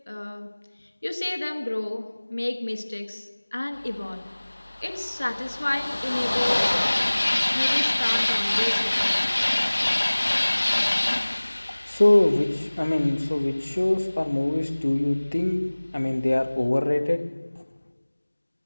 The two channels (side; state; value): both; inverted; correlation -1.00